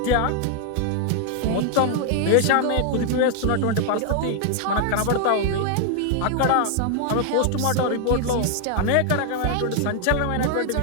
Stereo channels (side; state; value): both; different; correlation 0.00